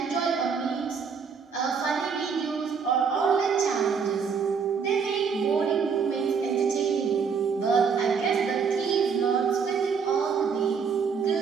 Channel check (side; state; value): left; quieter; 6.0 dB